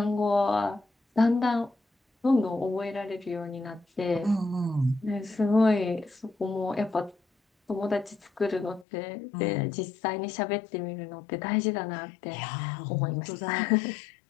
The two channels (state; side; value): drops out; right; at 8.8 s